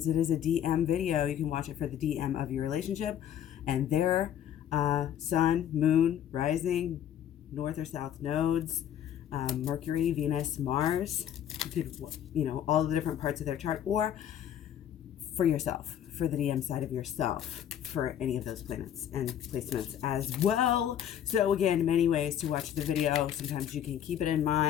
it is a DM video, you can watch it for the DM of your relationship and their sun, moon, rising, north or south nodes, Mercury, Venus, Mars. You could, all the different parts of their chart, or for yourself, for the DM side of yourself, for any of those planets and placements as well. So again, many ways to watch the video. Sometimes you can keep it in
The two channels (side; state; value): right; quieter; 10.2 dB